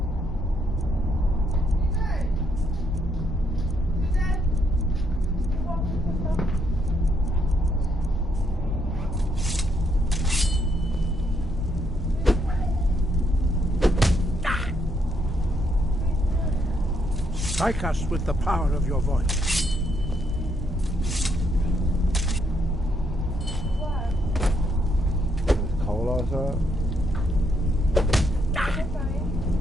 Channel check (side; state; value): both; normal; correlation 0.74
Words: Strike us with the power of your voice. It's cold outside.